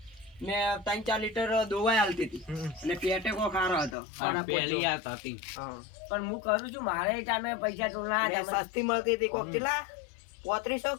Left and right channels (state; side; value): drops out; right; at 4.0 s